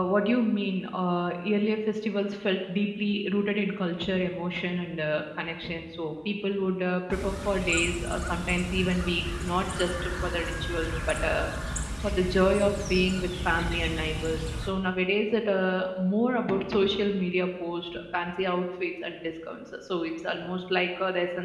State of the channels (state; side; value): identical; both; correlation 1.00